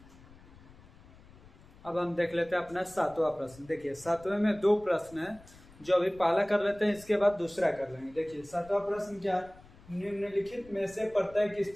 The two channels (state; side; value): noise; left; rumble, 23 dB below the sound